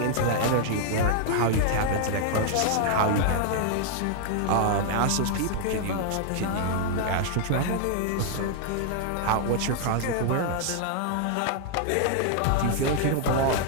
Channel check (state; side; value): different; both; correlation -0.01